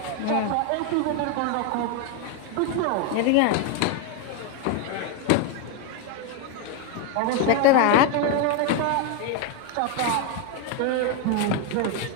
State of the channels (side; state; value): both; different; correlation 0.02